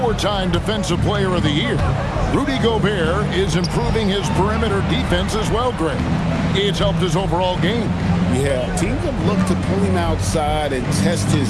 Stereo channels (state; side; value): identical; both; correlation 1.00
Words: Defensive Player of the Year. Rudy Gobert is improving his perimeter defense as well, Greg. It's helped his overall game. Yeah, teams have looked to pull him outside and test